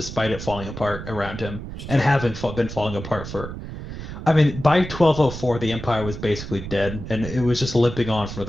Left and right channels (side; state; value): right; noise; rumble, 9 dB below the sound